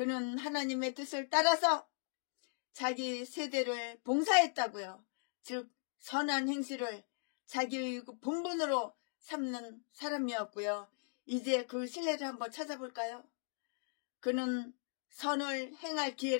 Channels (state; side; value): silent; right; digital silence